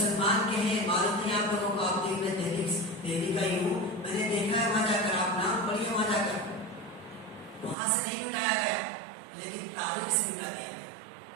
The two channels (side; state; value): left; drops out; at 7.8 s